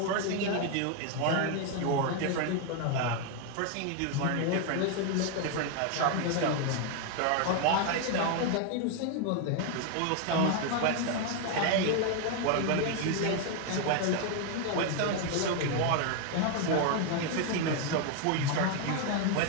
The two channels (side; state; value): both; different; correlation 0.01